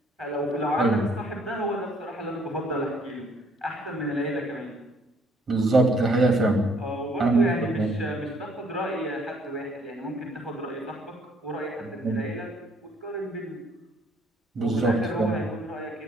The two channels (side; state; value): both; normal; correlation 0.64